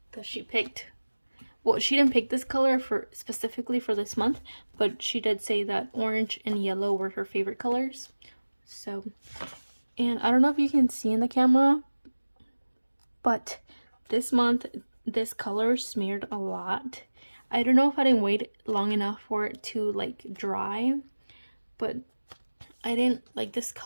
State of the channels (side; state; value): both; inverted; correlation -1.00